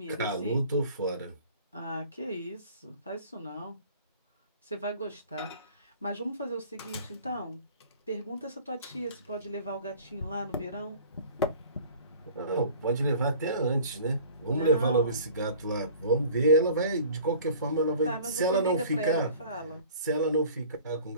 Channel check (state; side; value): inverted; both; correlation -0.47